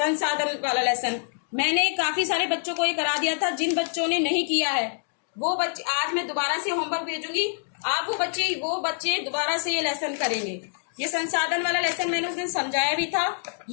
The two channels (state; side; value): silent; right; digital silence